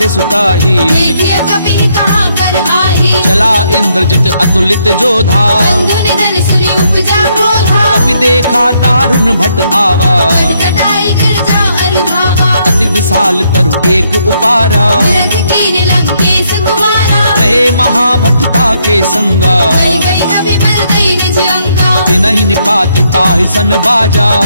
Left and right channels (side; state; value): both; inverted; correlation -0.74